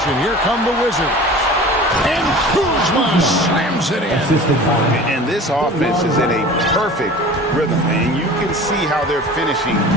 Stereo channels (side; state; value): both; normal; correlation 0.40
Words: Here come the Wizards. And Kuzma slams it in. And this offense is in a perfect rhythm. And you can see how they're finishing